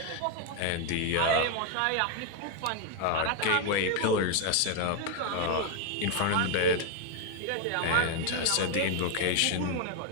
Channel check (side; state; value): both; different; correlation 0.01